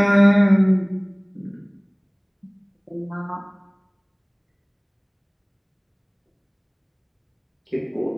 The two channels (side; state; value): both; identical; correlation 1.00